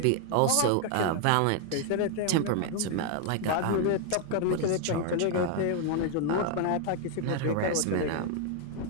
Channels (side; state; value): both; different; correlation 0.01